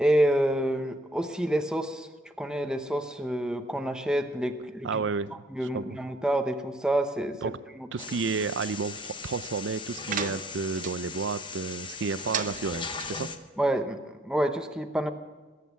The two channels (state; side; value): normal; both; correlation 0.62